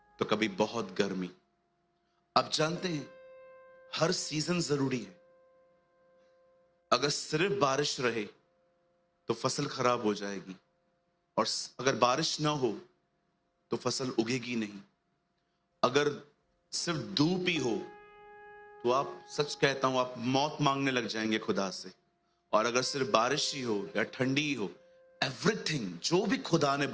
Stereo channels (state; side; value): identical; both; correlation 1.00